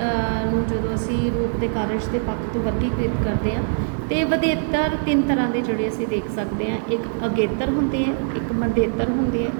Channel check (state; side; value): silent; left; 62 dB below the other